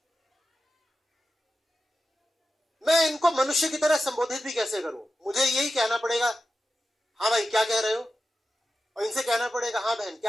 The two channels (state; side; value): normal; both; correlation 0.92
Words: मैं इनको मनुष्य की तरह संबोधित भी कैसे करूं? मुझे यही कहना पड़ेगा, हाँ भाई क्या कह रहे हो, और इनसे कहना पड़ेगा, हाँ बहन